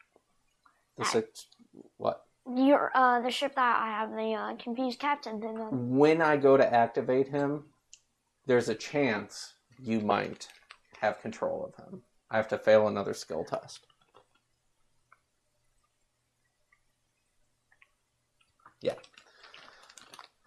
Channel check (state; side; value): identical; both; correlation 1.00